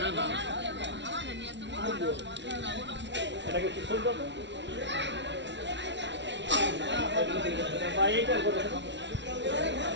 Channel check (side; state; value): left; late; 0.52 ms